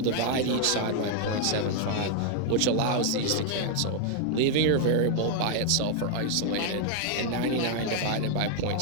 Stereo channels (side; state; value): both; different; correlation 0.00